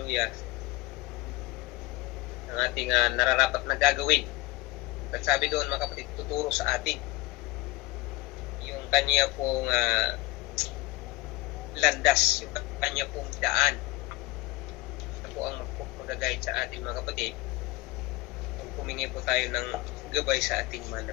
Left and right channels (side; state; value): right; quieter; 21.3 dB